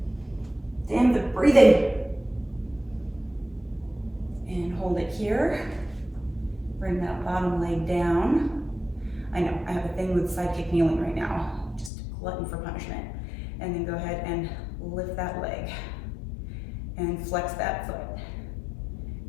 Damn the breathing. And hold it here. Bring that bottom leg down. I know, I have a thing with side kick kneeling right now. Just glutton for punishment. And then go ahead and lift that leg. And flex that foot.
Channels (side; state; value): right; drops out; at 11.9 s